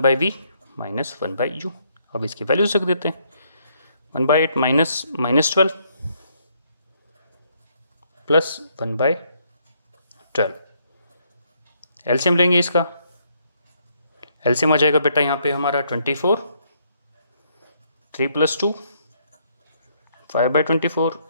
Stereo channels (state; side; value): inverted; both; correlation -0.71